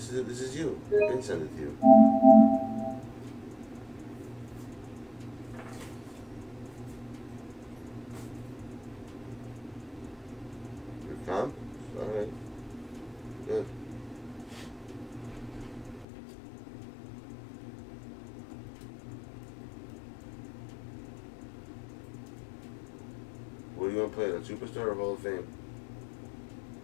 This is you. I've been sent it to you. Your comp? Alright. Good. What do you want to play? The Superstar or Hall of Fame?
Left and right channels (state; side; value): drops out; right; at 16.1 s